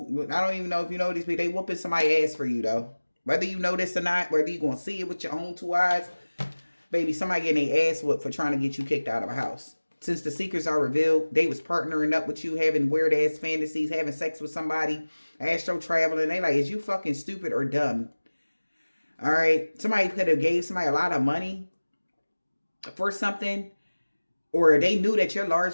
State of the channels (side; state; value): both; inverted; correlation -1.00